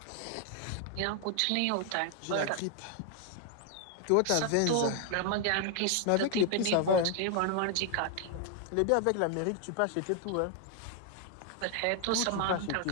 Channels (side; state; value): both; different; correlation 0.00